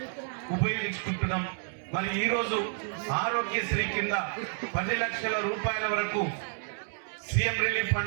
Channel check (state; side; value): silent; left; 55 dB below the other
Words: ఉపయోగించుకుంటున్నాం. మరి ఈరోజు ఆరోగ్యశ్రీ కింద 10 లక్షల రూపాయల వరకు సీఎం రిలీఫ్